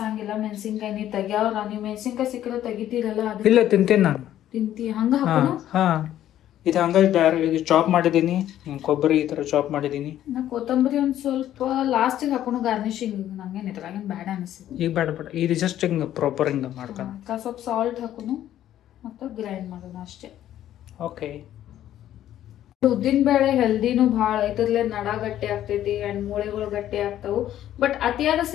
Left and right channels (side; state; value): right; quieter; 12.0 dB